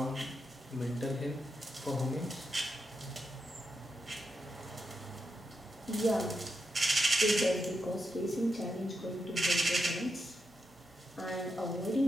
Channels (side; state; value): both; normal; correlation 0.85